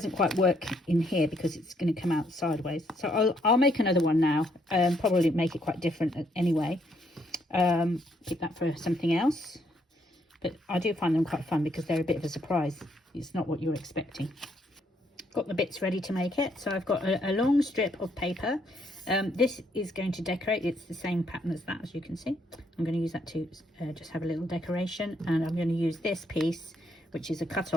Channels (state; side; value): normal; both; correlation 0.72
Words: quite work in here because it's going to come out sideways, so I'll make another one now. Probably make it quite different anyway. Keep that for something else, but I do find them quite fun because they're a bit of a surprise. It's not what you're expecting. Got the bits ready to make it, so I've got a long strip of paper. This is going to decorate. It's the same pattern as that, as you can see. I'm going to use that to just have a little decoration, and I'm going to use this piece, which is a cut